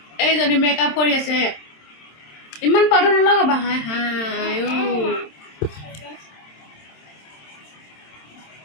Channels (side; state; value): right; late; 27 ms